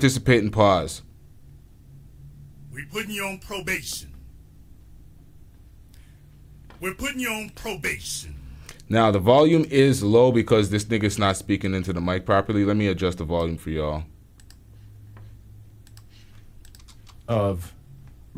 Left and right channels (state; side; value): identical; both; correlation 1.00